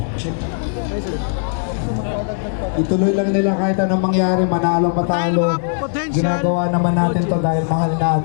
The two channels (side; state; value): right; silent; digital silence